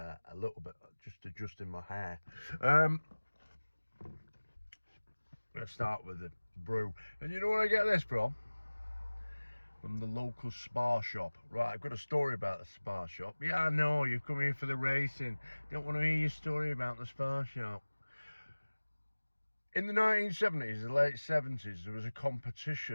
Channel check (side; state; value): both; inverted; correlation -1.00